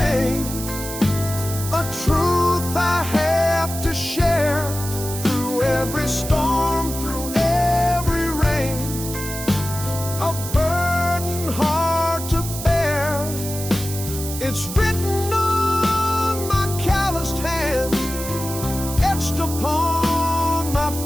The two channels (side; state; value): right; noise; hiss, 8 dB below the sound